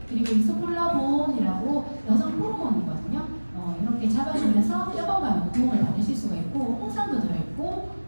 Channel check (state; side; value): inverted; both; correlation -1.00